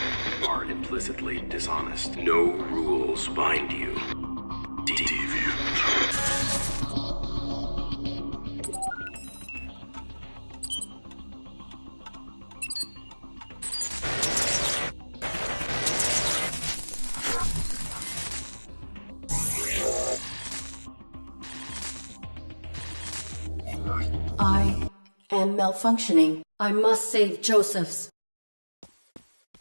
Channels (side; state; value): both; inverted; correlation -1.00